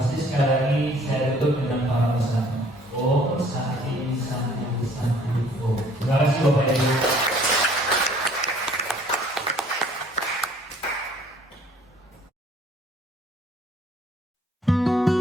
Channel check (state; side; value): normal; both; correlation 0.57